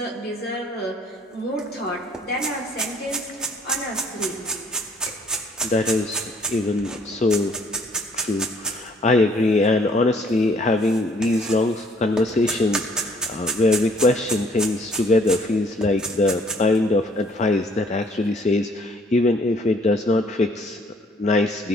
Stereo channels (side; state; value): both; normal; correlation 0.61